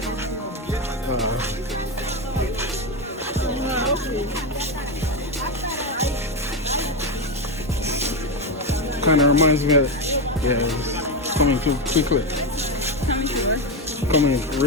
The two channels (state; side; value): normal; both; correlation 0.11